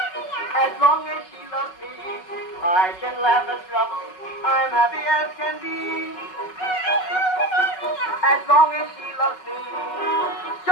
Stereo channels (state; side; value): late; right; 5.4 ms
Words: As long as she loves me, I can laugh at trouble. I'm happy as can be. As long as she loves me,